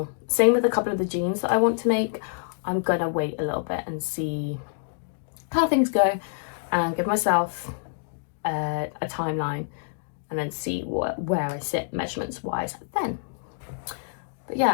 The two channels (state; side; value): silent; right; digital silence